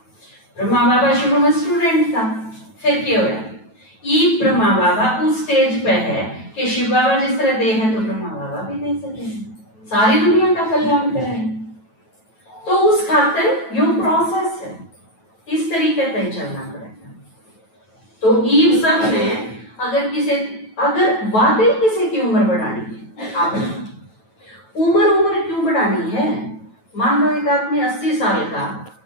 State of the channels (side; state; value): right; late; 9.1 ms